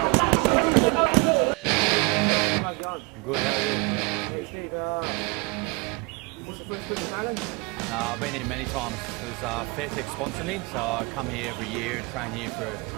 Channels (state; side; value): quieter; left; 28.8 dB